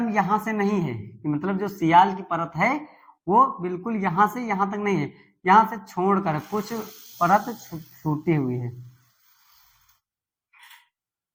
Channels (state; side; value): identical; both; correlation 1.00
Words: यहां से नहीं है, मतलब जो सियाल की परत है वो बिल्कुल यहां से यहां तक नहीं है, यहां से छोड़कर कुछ परत छूटी हुई है।